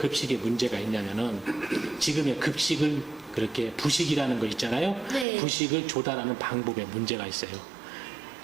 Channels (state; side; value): drops out; left; at 5.2 s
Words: 문제가 있냐면은 지금의 급식을 그렇게 부식이라는 거 있잖아요. 네. 부식을 조달하는 방법에 문제가 있어요.